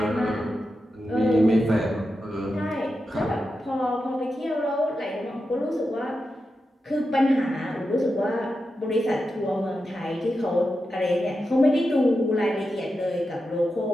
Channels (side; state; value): both; normal; correlation 0.89